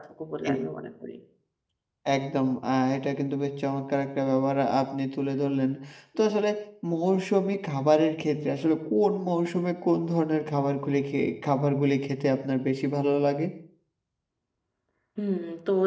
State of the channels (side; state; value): both; identical; correlation 1.00